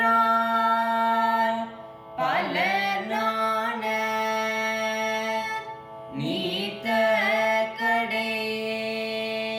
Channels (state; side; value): identical; both; correlation 1.00